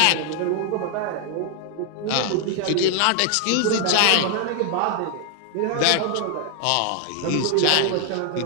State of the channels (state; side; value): different; both; correlation 0.00